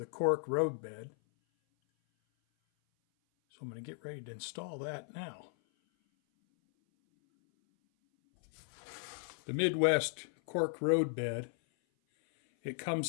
Cork roadbed. So I'm going to get ready to install that now. The Midwest Cork roadbed, it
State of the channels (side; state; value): right; silent; 54 dB below the other